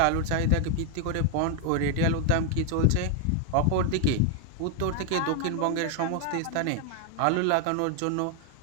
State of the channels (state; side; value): different; both; correlation 0.00